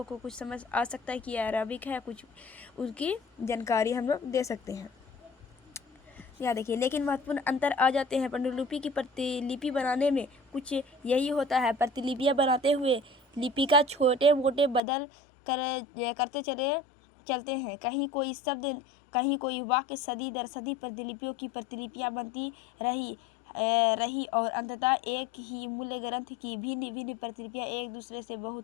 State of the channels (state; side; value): drops out; right; at 14.8 s